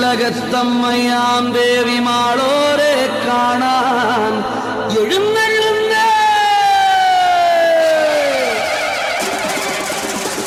ദേവി മാളോരെ കാണാൻ എഴുന്നള്ളുന്നേ.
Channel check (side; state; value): both; identical; correlation 1.00